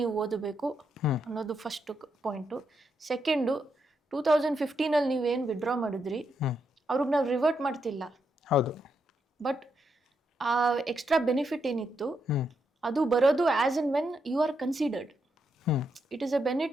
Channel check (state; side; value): normal; both; correlation 0.81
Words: ಓದಬೇಕು ಅನ್ನೋದು ಫಸ್ಟ್ ಪಾಯಿಂಟು. ಸೆಕೆಂಡು, 2015 ನೀವೇನು ವಿಡ್ರಾ ಮಾಡಿದ್ರಿ ಅವ್ರಿಗೆ ನಾವು ರಿವರ್ಟ್ ಮಾಡ್ತಿಲ್ಲ. ಹೌದು. ಬಟ್ ಆ ಎಕ್ಸ್ಟ್ರಾ ಬೆನಿಫಿಟ್ ಏನಿತ್ತು ಅದು ಬರೋದು as and when you are considered. It is a